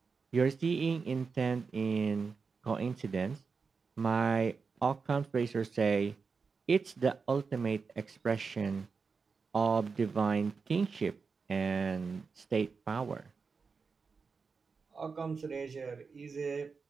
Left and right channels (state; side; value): quieter; left; 5.0 dB